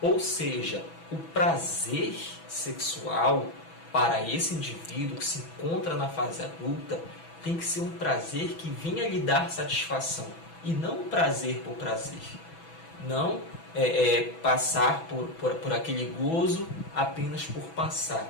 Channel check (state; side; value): late; right; 6.1 ms